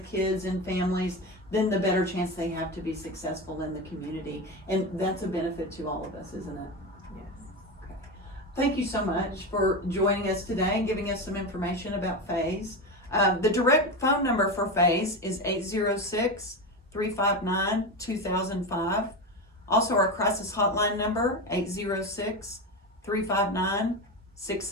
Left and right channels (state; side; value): normal; both; correlation 0.19